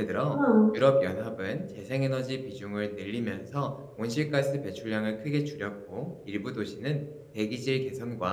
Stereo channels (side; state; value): both; identical; correlation 1.00